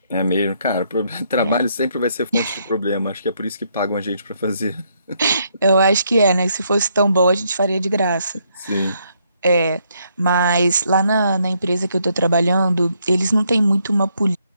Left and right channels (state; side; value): inverted; both; correlation -0.73